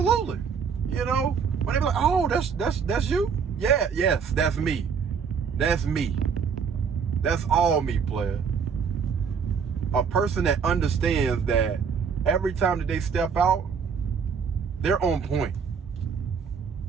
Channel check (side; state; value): left; quieter; 6.3 dB